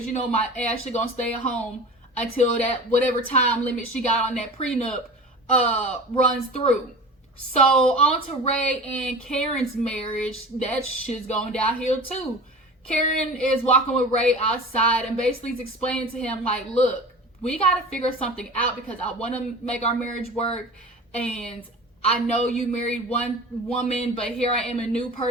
you know my Ashley gonna stay at home until that whatever time limit she got on that prenup runs through. So on to Ray and Karen's marriage. That shit's going downhill too. Karen is walking with Ray outside and basically is explaining to him like, look, we gotta figure something out because I want to make our marriage work, and I know you married one woman, but here I am a new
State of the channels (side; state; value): both; normal; correlation 0.36